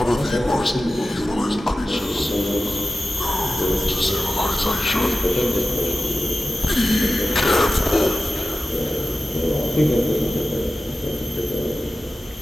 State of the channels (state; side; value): normal; both; correlation 0.94